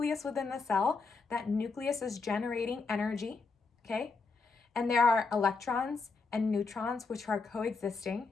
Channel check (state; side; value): quieter; right; 4.3 dB